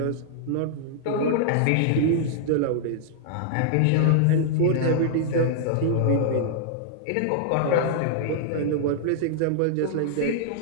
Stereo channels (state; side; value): different; both; correlation -0.01